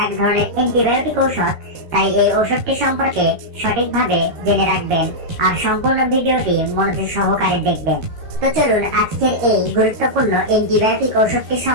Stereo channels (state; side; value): late; left; 13 ms